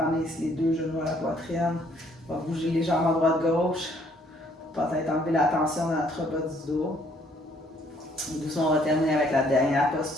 ramener ici les deux genoux à la poitrine. On va bouger les jambes à droite-gauche pour peut-être enlever la tension dans notre bas du dos. Et doucement, on va terminer avec la dernière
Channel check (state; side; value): normal; both; correlation 0.64